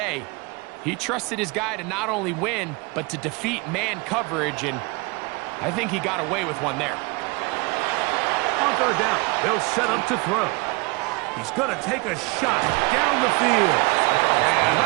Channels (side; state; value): left; quieter; 26.5 dB